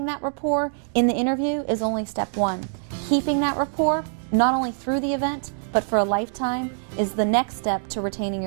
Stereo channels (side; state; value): left; silent; digital silence